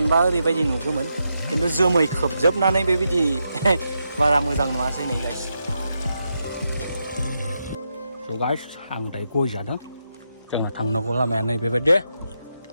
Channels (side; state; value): both; inverted; correlation -0.84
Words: ओरैबायदि नुगौमोन, खिन्थु जोमै खोबजोबनानै बेबायदि बारा मोजां नुवासै नै गाइस। स' गाइस, आं दायो गय जादों। जोंना थांनांगौ लामाया नै बेबायदि,